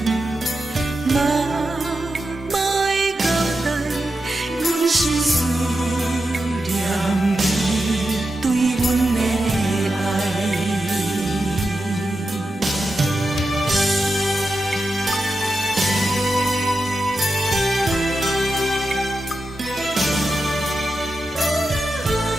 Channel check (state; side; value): normal; both; correlation 0.89